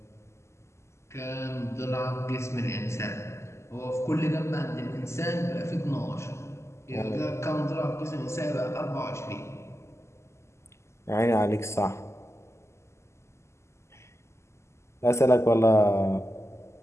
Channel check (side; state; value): right; late; 0.13 ms